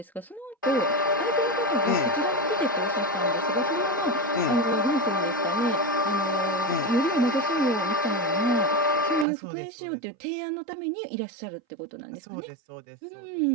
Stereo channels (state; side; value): drops out; left; at 9.2 s